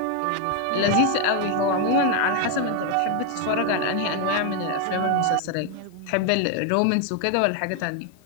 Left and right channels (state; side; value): different; both; correlation 0.01